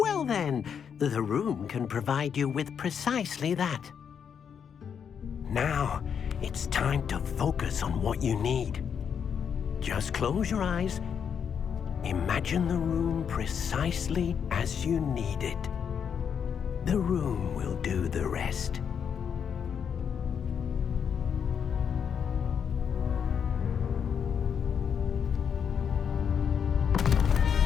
then, the room can provide you with precisely that. Now, it's time to focus on what you need. Just close your eyes. Imagine the room precisely as you need it. The room will do the rest.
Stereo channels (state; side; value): quieter; right; 7.4 dB